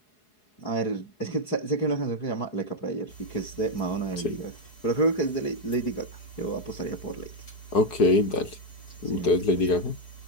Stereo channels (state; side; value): late; right; 4.7 ms